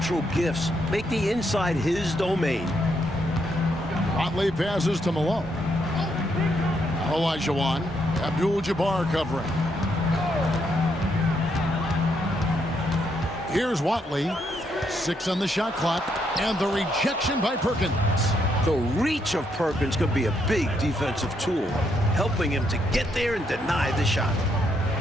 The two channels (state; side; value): normal; both; correlation 0.76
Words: gifts make the inside his domain. Watley passes to Malone. Olajuwon, Abdul-Jabbar covering. Here's Watley. 6 on the shot clock, and the rejection by Perkins. The reach of Perkins could be a big defensive tool, helping him to get there and deny the shot.